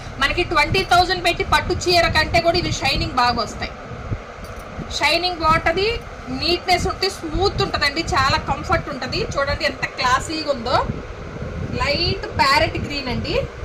మనకి 20,000 పెట్టి పట్టు చీర కంటే కూడా ఇవి షైనింగ్ బాగా వస్తాయి. షైనింగ్ బాగుంటుంది, నీట్నెస్ ఉంటే స్మూత్ ఉంటుందండి, చాలా కంఫర్ట్ ఉంటుంది. చూడండి ఎంత క్లాసీగా ఉందో. లైట్ ప్యారెట్ గ్రీన్ అండి,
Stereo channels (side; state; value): both; identical; correlation 1.00